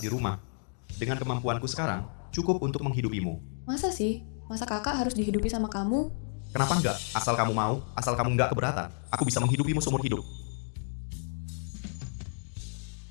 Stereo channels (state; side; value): silent; right; 57 dB below the other